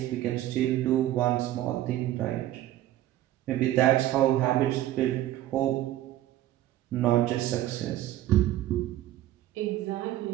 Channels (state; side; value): quieter; left; 14.0 dB